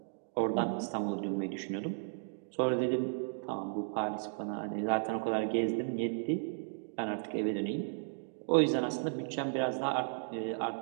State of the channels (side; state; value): left; silent; digital silence